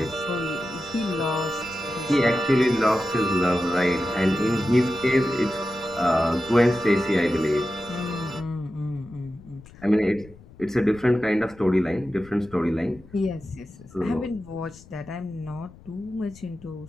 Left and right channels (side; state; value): left; noise; rumble, 21 dB below the sound